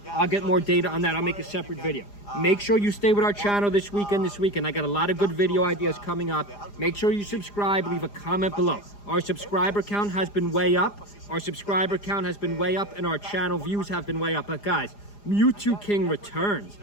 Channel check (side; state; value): right; late; 4.9 ms